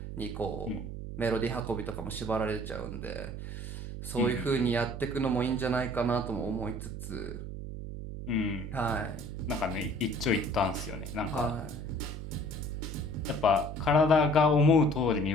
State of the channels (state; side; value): noise; right; hum, 7 dB below the sound